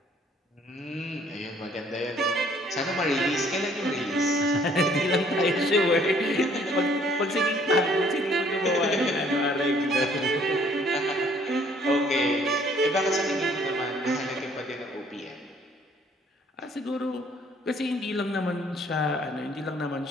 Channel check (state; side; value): normal; both; correlation 0.61